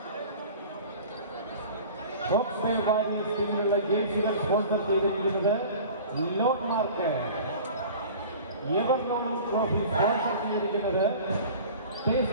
Hawke's Bay warriors ടീമിലുള്ള ജേഴ്സികൾ സ്പോൺസർ ചെയ്തിരിക്കുന്നത് lord mark. Ever trophy sponsor ചെയ്തിരിക്കുന്നത്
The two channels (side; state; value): both; inverted; correlation -0.41